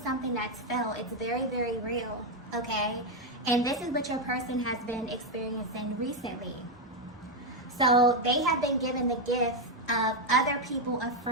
something that's felt. It's very, very real, okay? And this is what your person has been experiencing recently. So they have been given the gift of other people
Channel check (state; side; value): normal; both; correlation 0.04